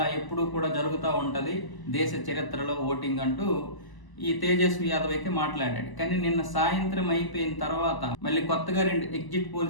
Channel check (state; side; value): late; right; 1.0 ms